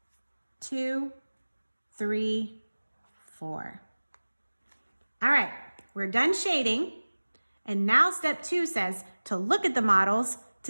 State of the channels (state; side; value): inverted; both; correlation -1.00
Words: 2, 3, 4. All right, we're done shading. And now step 2 says to look at the models